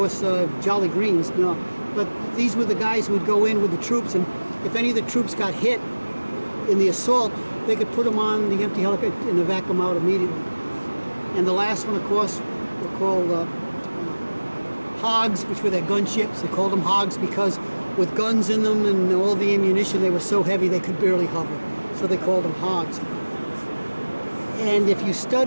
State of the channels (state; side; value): inverted; both; correlation -1.00